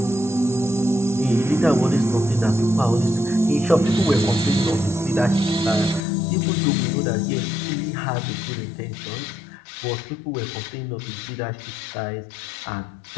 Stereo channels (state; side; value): drops out; right; at 6.0 s